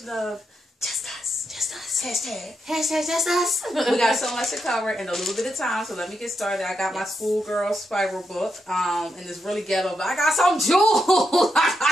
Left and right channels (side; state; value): both; normal; correlation 0.83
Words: of Just Us. Just Us. Hashtag Just Us. We got so much to cover in a little bit of time, so let me get started. I got my schoolgirl spiral book, and it's really ghetto, but I got some jewels. I